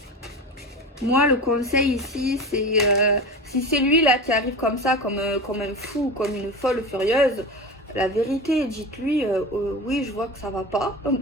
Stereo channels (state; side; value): normal; both; correlation 0.28